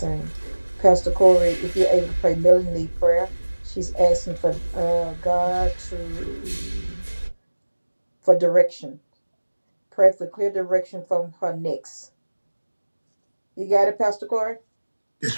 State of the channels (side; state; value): both; inverted; correlation -1.00